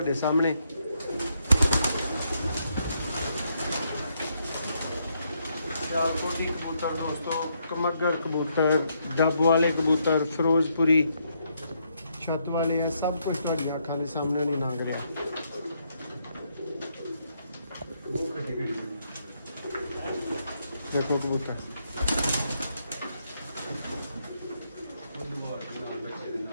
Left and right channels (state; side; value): inverted; both; correlation -0.76